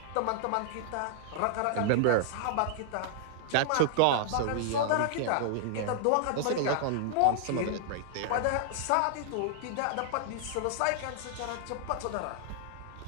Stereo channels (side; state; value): both; different; correlation -0.01